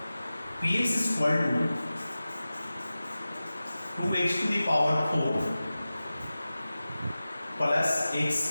Px is equal to 2x to the power 4 plus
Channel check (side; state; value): both; inverted; correlation -0.95